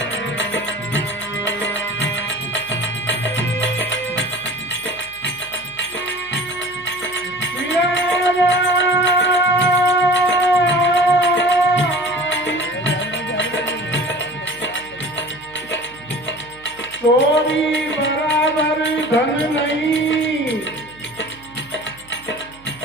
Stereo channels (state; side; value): noise; right; hum, 25 dB below the sound